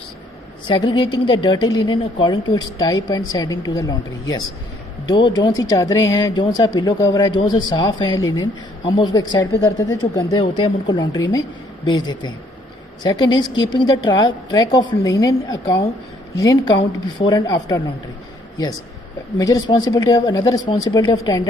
segregating the dirty linen according to its type and sending to the laundry. Yes, जो सी चादरें हैं, जो सा पिलो कवर है, जो से साफ़ है लिनन, हम उसको एक साइड पे करते थे. जो गंदे होते हैं हम उनको लॉन्ड्री में भेज देते हैं. Second is keeping the track of linen count before and after laundry. Yes, major responsibility of another responsibility of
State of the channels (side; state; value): both; normal; correlation 0.65